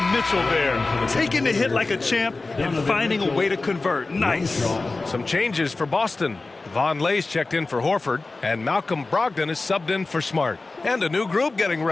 Mitchell there. Taking the hit like a champ and finding a way to convert. Nice. Some changes for Boston. Von Lay's checked in for Horford, and Malcolm Brogdon is subbed in for Smart. And a new group getting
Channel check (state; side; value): quieter; right; 3.5 dB